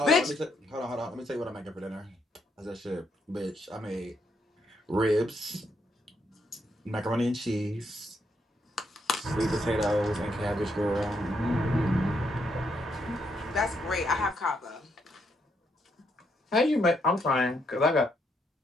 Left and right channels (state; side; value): normal; both; correlation 0.76